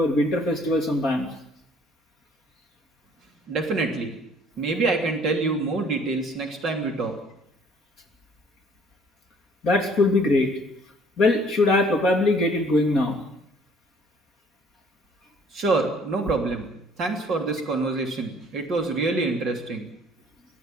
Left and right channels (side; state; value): both; normal; correlation 0.57